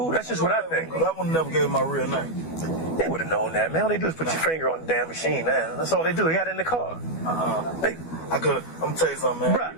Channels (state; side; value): late; right; 12 ms